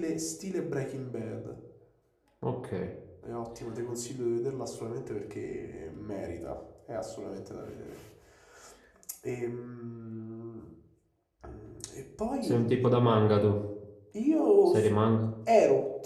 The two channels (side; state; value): both; identical; correlation 1.00